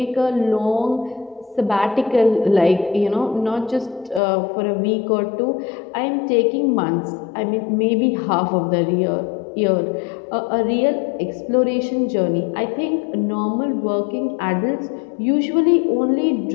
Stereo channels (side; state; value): right; drops out; at 4.2 s